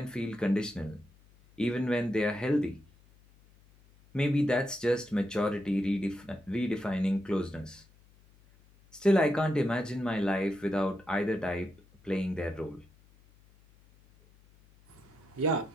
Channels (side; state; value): left; noise; hum, 28 dB below the sound